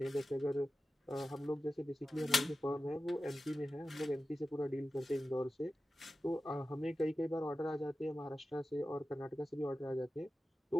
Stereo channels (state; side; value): normal; both; correlation 0.93